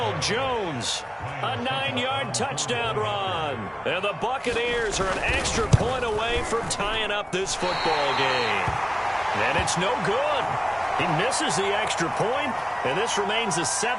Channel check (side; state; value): both; identical; correlation 1.00